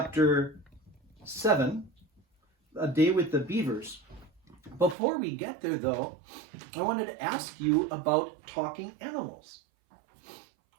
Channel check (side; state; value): left; drops out; at 5.0 s